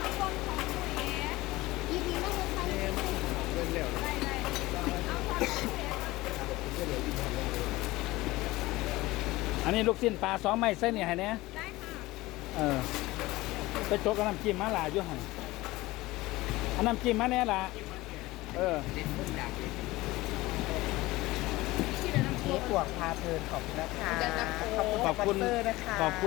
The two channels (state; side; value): quieter; right; 19.4 dB